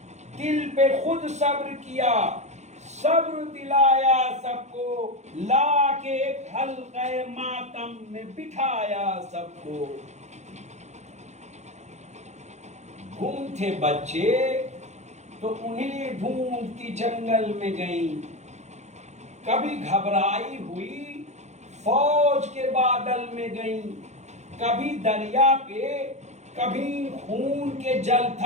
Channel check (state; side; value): late; left; 0.33 ms